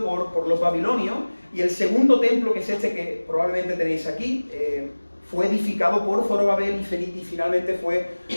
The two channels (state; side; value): inverted; both; correlation -1.00